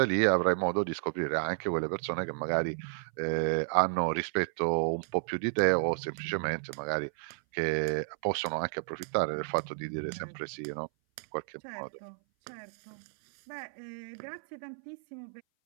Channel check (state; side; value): silent; left; 57 dB below the other